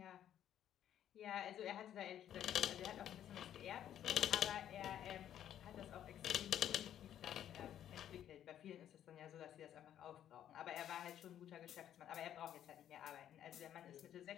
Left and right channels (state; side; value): quieter; right; 10.6 dB